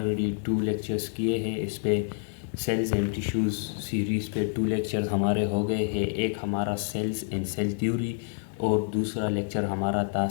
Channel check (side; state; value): right; silent; digital silence